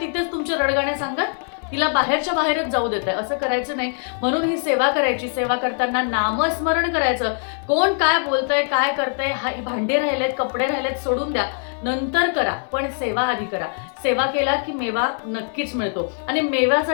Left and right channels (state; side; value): silent; right; 59 dB below the other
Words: तुमचे रडगाणे सांगत तिला बाहेरच्या बाहेरच जाऊ देताय. असं करायचं नाही. म्हणून ही सेवा करायची. सेवा करताना नामस्मरण करायचं. कोण काय बोलतंय, काय करतंय, भांडे राहिलेत, कपडे राहिलेत, सोडून द्या, नंतर करा, पण सेवा आधी करा. सेवा केला की मेवा नक्कीच मिळतो. आणि